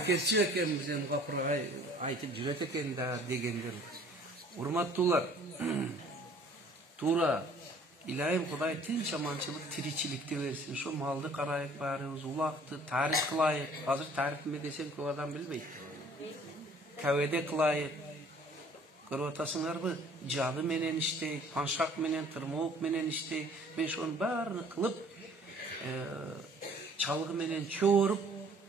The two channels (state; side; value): normal; both; correlation 0.54